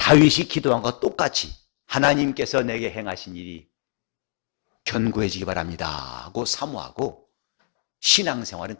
기도한 것과 똑같이 하나님께서 내게 행하신 일이 견고해지기 바랍니다 하고 사모하고, 신앙생활은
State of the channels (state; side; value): silent; right; digital silence